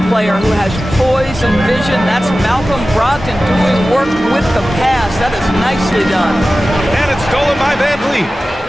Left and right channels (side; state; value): both; normal; correlation 0.95